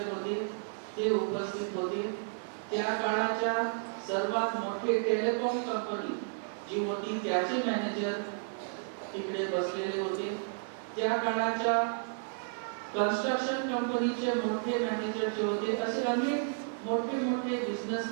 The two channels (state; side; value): silent; left; 56 dB below the other